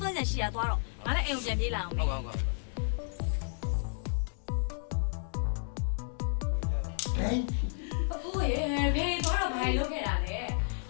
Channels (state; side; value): silent; right; digital silence